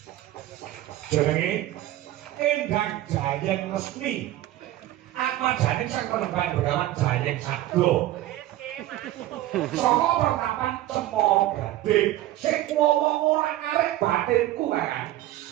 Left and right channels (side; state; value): left; quieter; 14.9 dB